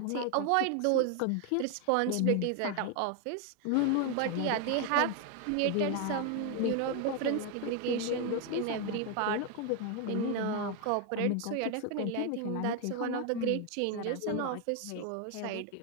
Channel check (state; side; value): different; both; correlation 0.01